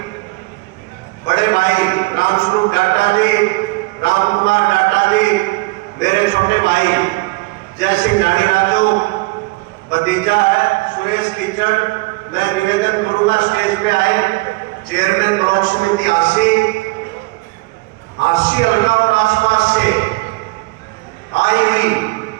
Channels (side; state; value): left; quieter; 24.2 dB